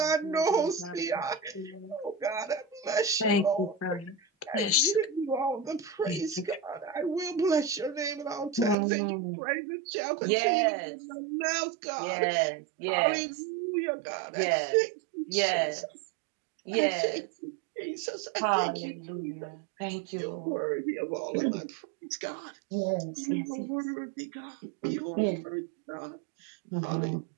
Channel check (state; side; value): drops out; left; at 8.8 s